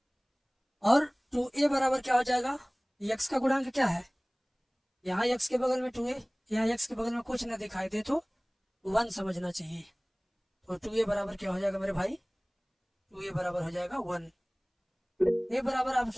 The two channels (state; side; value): identical; both; correlation 1.00